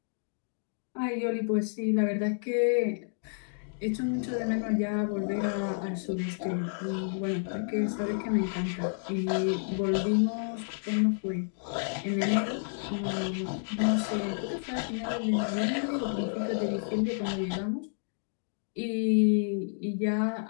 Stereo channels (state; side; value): silent; right; digital silence